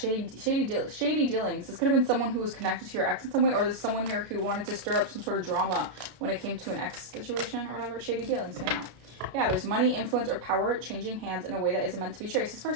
dealings. This could have been someone who was connected to your ex in some way, or there's someone here who wanted to stir up some sort of drama when it came to an ex situation or whatever. Shady dealings came out. Yeah, there's money, influence, or power changing hands in a way that isn't meant to be traced. This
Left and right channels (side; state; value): left; late; 32 ms